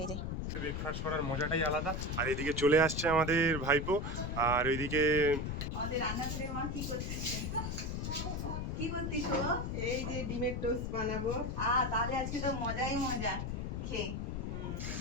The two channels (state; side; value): noise; left; rumble, 3 dB below the sound